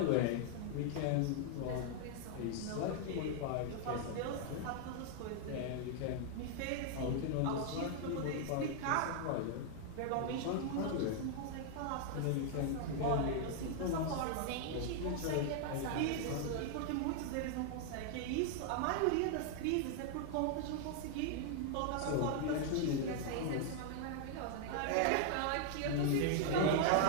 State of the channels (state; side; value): different; both; correlation 0.00